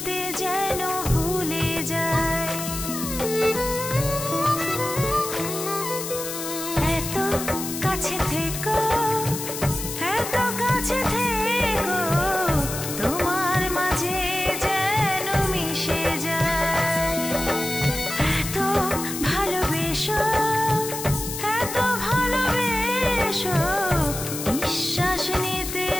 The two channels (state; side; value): noise; left; hiss, 6 dB below the sound